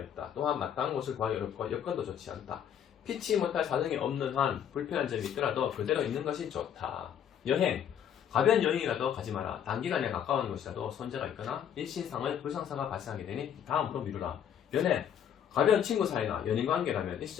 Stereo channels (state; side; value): quieter; right; 9.1 dB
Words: 있다. 또한 마땅한 곳을 구하기 어렵고 여건도 좋지 않다. 피치 못할 사정이 없는 한 불편한 점이 있더라도 그대로 있는 것이 좋다. 여행, 가벼운 여행이라도 가지 마라. 단기간에 가까운 곳이라도 손재가 있거나 일신상의 불상사가 발생하게 되니 다음으로 미루라. 연애, 가벼운 친구 사이나 연인관계라면